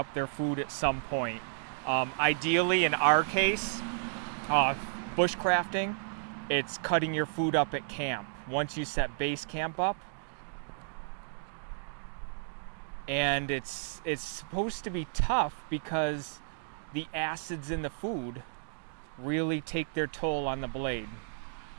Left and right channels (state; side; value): silent; left; digital silence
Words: their food at some point. Ideally, in our case, bushcrafting, it's cutting your food up at camp. Once you set base camp up, and it's supposed to be tough because the acids in the food really take their toll on the blade.